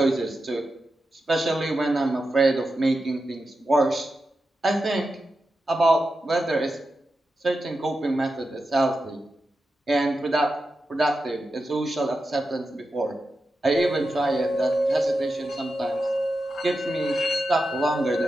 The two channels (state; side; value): normal; both; correlation 0.90